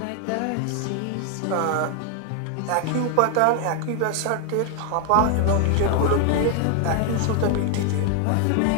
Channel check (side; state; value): both; different; correlation 0.00